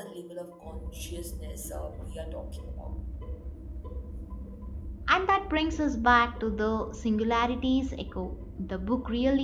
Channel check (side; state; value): both; identical; correlation 1.00